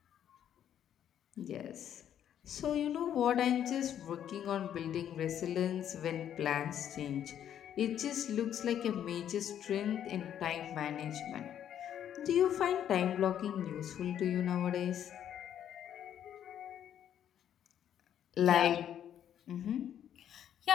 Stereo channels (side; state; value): right; quieter; 10.0 dB